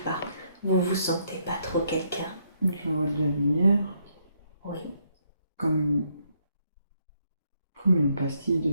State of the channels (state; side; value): inverted; both; correlation -0.74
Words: par vous vous sentez pas trop quelqu'un? Je vois de la lumière. Oui. Comme une pastille de